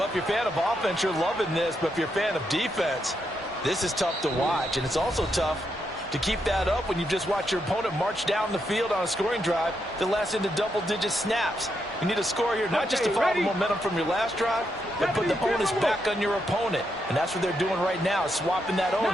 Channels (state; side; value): normal; both; correlation 0.81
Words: if you're a fan of offense, you're loving this, but if you're a fan of defense, this is tough to watch, and it's also tough To keep that up when you just watch your opponent march down the field on a scoring drive that lasts into double-digit snaps. You need a score here, not just to follow the momentum from your last drive, but put the onus back on your opponent. And that's what they're doing right now, swapping that